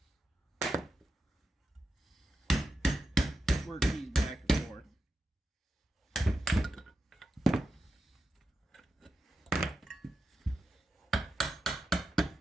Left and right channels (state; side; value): normal; both; correlation 0.89